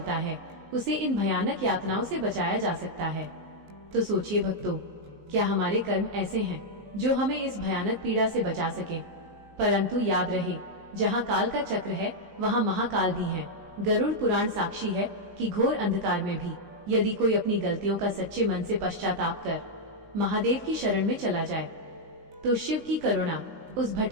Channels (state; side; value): late; left; 19 ms